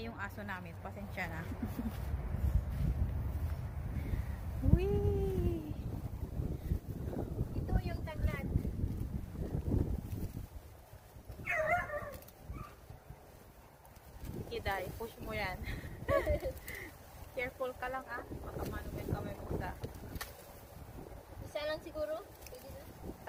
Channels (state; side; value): identical; both; correlation 1.00